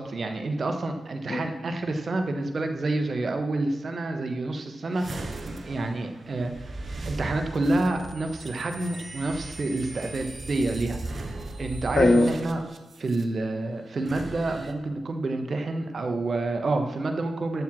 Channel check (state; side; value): normal; both; correlation 0.92